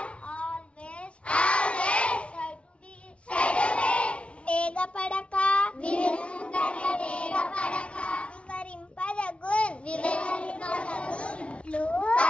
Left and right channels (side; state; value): right; late; 0.061 ms